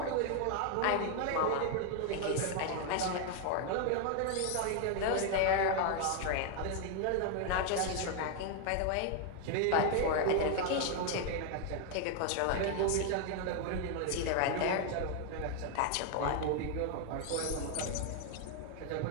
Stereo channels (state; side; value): different; both; correlation 0.01